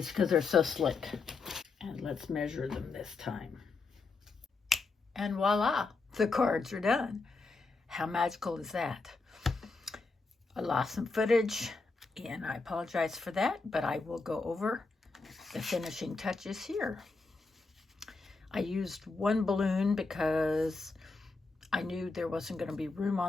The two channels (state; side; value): quieter; right; 4.0 dB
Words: because they're so slick. And let's measure them this time. And voila, the cards are done. How magical is that? I lost some footage, and I apologize for that, but I will go over the finishing touches here. I used one balloon because I knew there wasn't going to be room